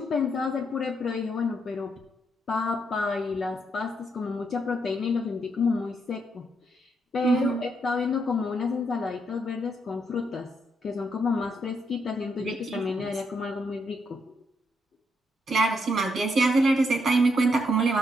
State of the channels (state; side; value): normal; both; correlation 0.77